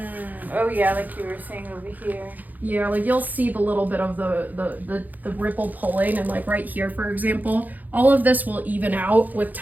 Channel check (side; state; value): left; late; 0.082 ms